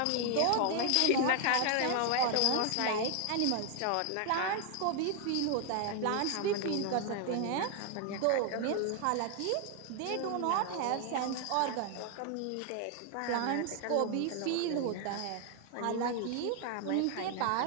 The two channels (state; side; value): different; both; correlation 0.00